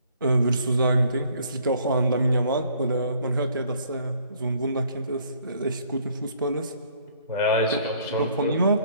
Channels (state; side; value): inverted; both; correlation -0.62